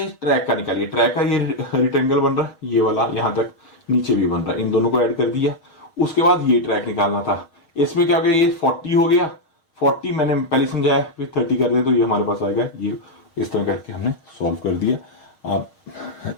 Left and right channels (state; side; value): late; right; 6.4 ms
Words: ट्रैक का निकालिए, ट्रैक का ये रेक्टेंगल बन रहा है, ये वाला यहां तक नीचे भी बन रहा है, इन दोनों को ऐड कर दिया। उसके बाद ये ट्रैक निकालना था, इसमें क्या हो गया, ये 40 हो गया, 40 मैंने पहले समझाया, फिर 30 कर दे तो ये हमारे पास आएगा, ये इस तरह करके हमने सॉल्व कर दिया। आप